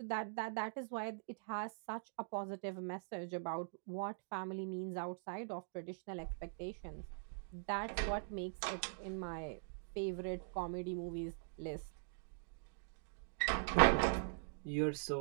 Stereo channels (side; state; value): left; silent; digital silence